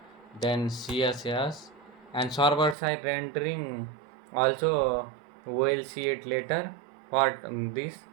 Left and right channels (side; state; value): left; drops out; at 2.8 s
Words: then css and server side rendering also we'll see it later. For this